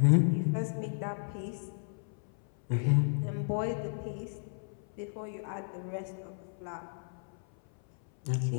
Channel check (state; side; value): silent; right; 56 dB below the other